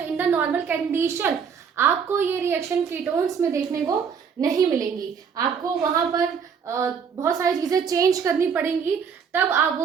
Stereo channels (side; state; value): left; quieter; 6.7 dB